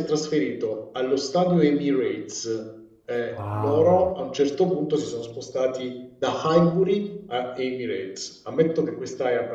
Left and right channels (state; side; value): identical; both; correlation 1.00